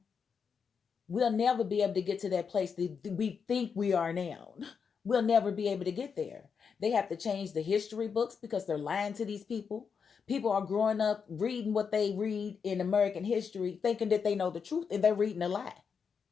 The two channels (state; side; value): quieter; right; 6.2 dB